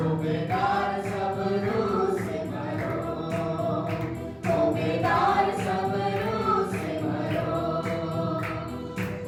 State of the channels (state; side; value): identical; both; correlation 1.00